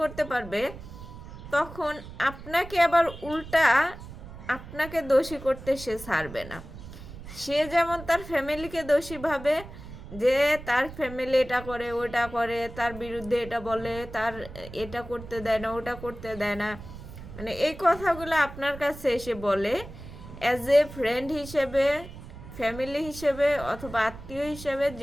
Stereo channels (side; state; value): right; noise; rumble, 14 dB below the sound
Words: করতে পারবে, তখন আপনাকে আবার উল্টা আপনাকে দোষী করতে সে ছাড়বে না। সে যেমন তার ফ্যামিলিকে দোষী ভাবে, যে তার ফ্যামিলি এটা করে ওটা করে, তার বিরুদ্ধে এটা বলে, তার এটা করতে দেয় না ওটা করতে দেয় না, মানে এই কথাগুলো আপনার কাছে এসে বলে অ্যাজ এ ফ্রেন্ড হিসেবে, ফ্যামিলি হিসেবে, অথবা আত্মীয় হিসেবে,